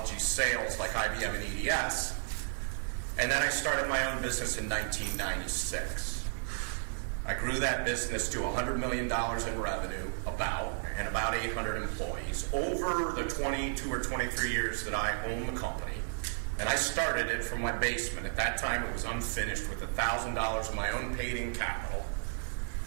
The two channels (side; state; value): left; silent; 56 dB below the other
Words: sales like IBM and EDS. And then I started my own business in 1996. I grew that business to $100 million in revenue, and about 800 employees over the 22 or 23 years that I own the company. And I started it from my basement. At that time, it was unfinished with $1,000 of my own paid-in capital.